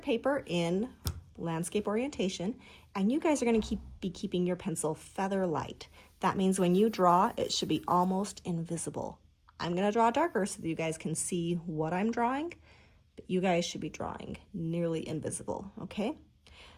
paper in landscape orientation, and you guys are going to be keeping your pencil feather light. That means when you draw, it should be almost invisible. I'm going to draw darker so that you guys can see what I'm drawing, but you guys should be drawing nearly invisible, okay?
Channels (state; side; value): identical; both; correlation 1.00